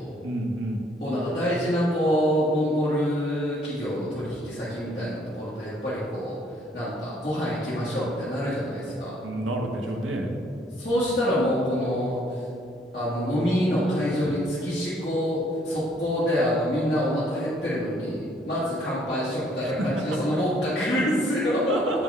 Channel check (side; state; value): both; normal; correlation 0.64